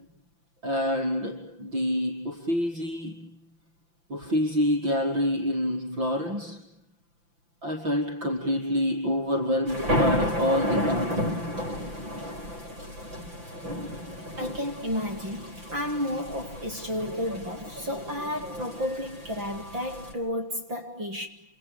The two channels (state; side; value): late; left; 5.9 ms